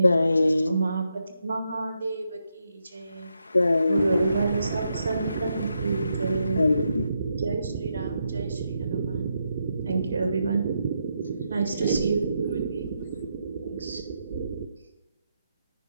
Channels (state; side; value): inverted; both; correlation -0.82